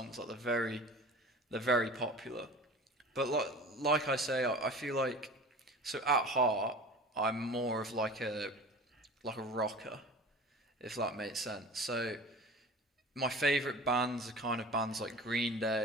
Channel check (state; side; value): normal; both; correlation 0.39